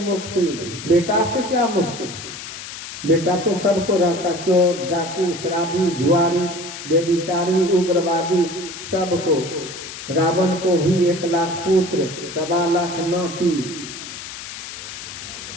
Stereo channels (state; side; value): noise; left; hiss, 10 dB below the sound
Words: नहीं। बेटा से क्या मुक्ति? बेटा तो सबको रहता, चोर डाकू शराबी जुआरी बेबिचारी उग्रवादी सबको। रावण को भी 1 लाख पुत्र 1.25 लाख नाती,